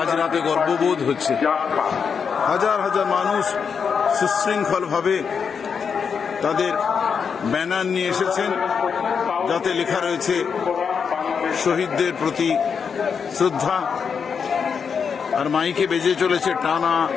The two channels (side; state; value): right; quieter; 6.3 dB